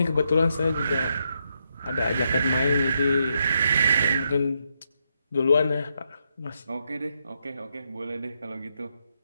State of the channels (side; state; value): both; inverted; correlation -0.80